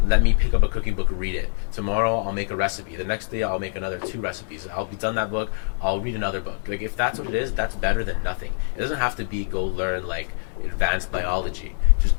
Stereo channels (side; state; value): right; silent; digital silence